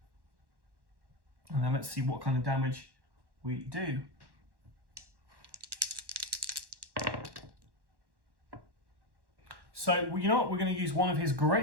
And then let's see what kind of damage we do. So you know what? We're going to use one of his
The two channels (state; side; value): late; left; 1.1 ms